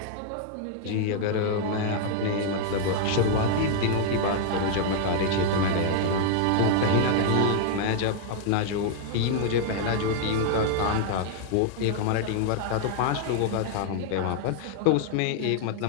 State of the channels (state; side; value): different; both; correlation 0.00